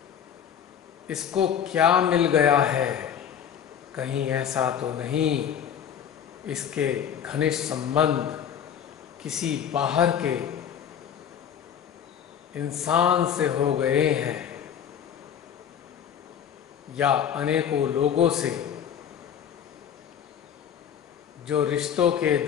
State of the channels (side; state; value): right; quieter; 8.7 dB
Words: इसको क्या मिल गया है? कहीं ऐसा तो नहीं इसके घनिष्ठ संबंध किसी बाहर के इंसान से हो गए हैं या अनेकों लोगों से जो रिश्तों के